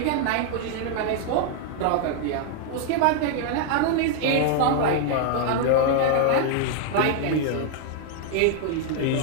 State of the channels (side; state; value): both; different; correlation 0.00